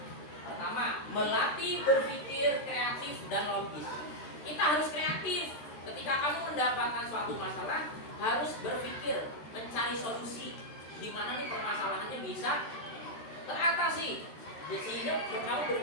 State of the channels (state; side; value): late; right; 13 ms